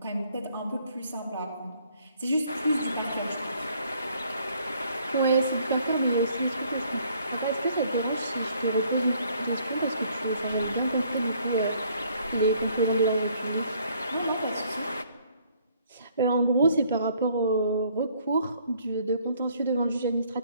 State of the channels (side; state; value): both; inverted; correlation -0.63